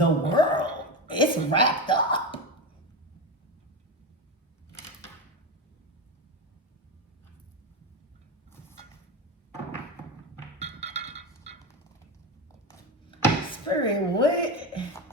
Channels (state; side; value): normal; both; correlation 0.18